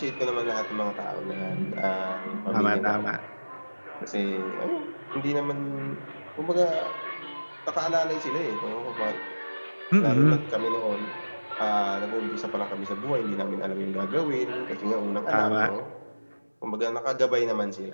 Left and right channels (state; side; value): inverted; both; correlation -1.00